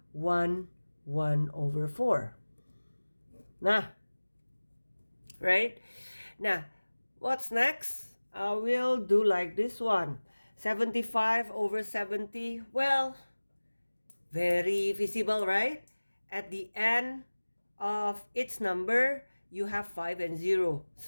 1 over 4. Nah, right? Now, what's next? I will do like this one. 75 over 70. Well, very visible, right? At the end of each number, you have 5 and 0.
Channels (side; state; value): both; inverted; correlation -1.00